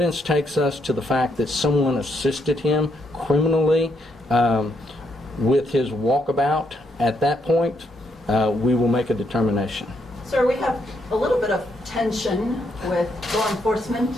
takes us to the fact that someone assisted him criminally with his walkabout, at that point, we will make a determination. Sir, we have a little bit of tension with law enforcement.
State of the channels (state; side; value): normal; both; correlation 0.76